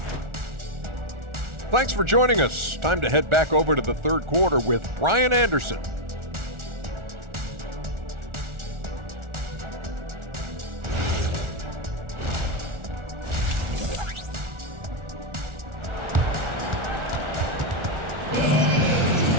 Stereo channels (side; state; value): left; late; 1.4 ms